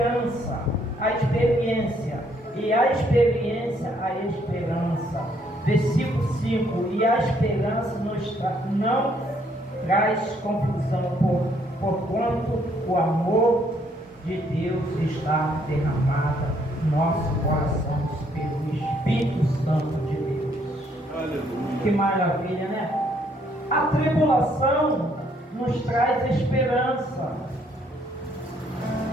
a experiência, e a experiência a esperança. Versículo 5: e a esperança não traz confusão, porquanto o amor de Deus está derramado no nosso coração pelo Espírito Santo de Deus. Aleluia. Que maravilha, né? A tribulação nos traz esperança.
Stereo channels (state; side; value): normal; both; correlation 0.68